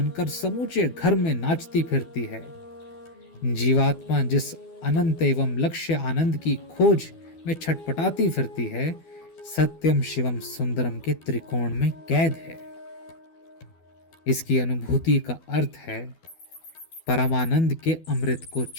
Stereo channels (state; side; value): late; right; 12 ms